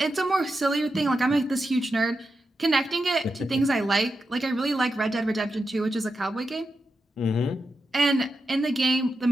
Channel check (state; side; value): normal; both; correlation 0.88